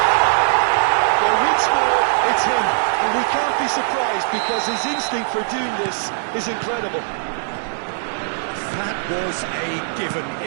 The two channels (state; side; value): silent; left; digital silence